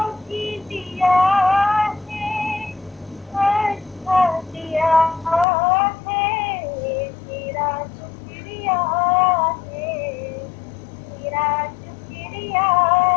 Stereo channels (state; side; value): drops out; right; at 5.5 s